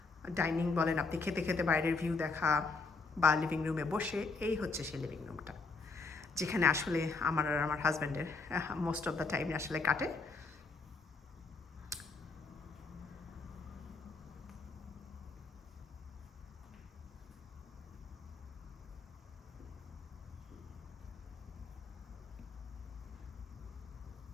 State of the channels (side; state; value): right; quieter; 4.1 dB